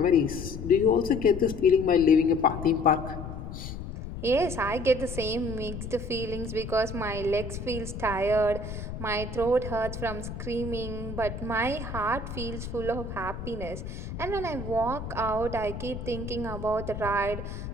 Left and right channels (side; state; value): left; noise; rumble, 8 dB below the sound